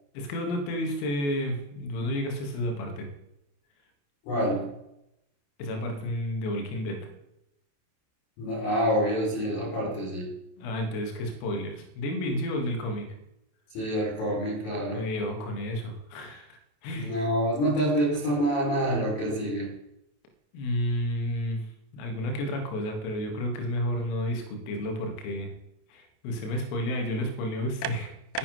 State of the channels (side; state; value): right; late; 28 ms